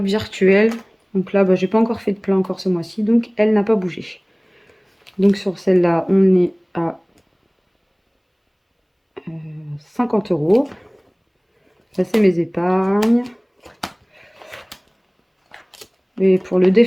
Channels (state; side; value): identical; both; correlation 1.00